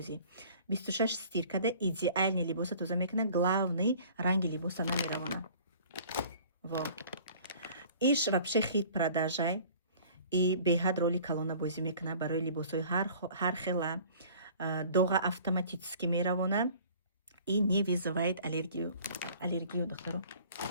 26 стиркада идеальни либоса тоза мекуна, главный ранги либоса намеравона. Во иш вообще хит продажай и беҳад роли калона бозӣ мекуна барои либосҳои ҳар хела. Доға автоматически меравона и не вызывает аллергию духтаро.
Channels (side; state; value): both; inverted; correlation -0.49